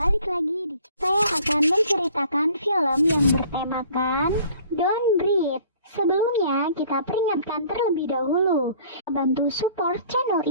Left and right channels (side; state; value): both; inverted; correlation -0.53